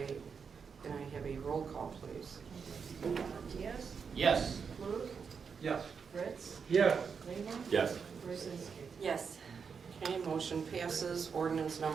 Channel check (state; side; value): quieter; left; 6.0 dB